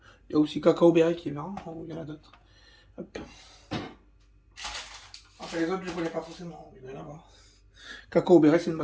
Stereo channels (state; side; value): identical; both; correlation 1.00